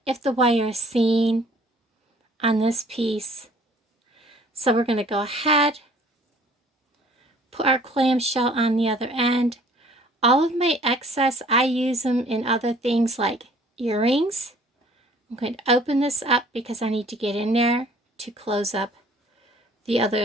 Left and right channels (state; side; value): normal; both; correlation 0.55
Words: if the wire is seen on this piece. So we're going to go ahead, put our clamshell on the other end. All of my excess, I use them in other things like earrings. I'm going to open this up because I need to get in there to close up the